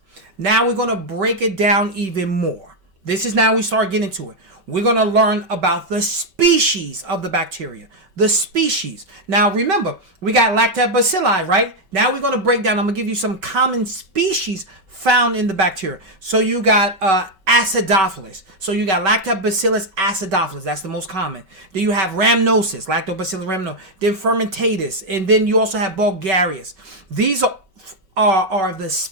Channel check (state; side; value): late; left; 5.2 ms